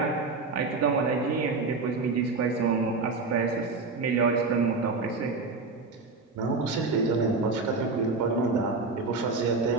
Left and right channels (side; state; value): left; quieter; 4.0 dB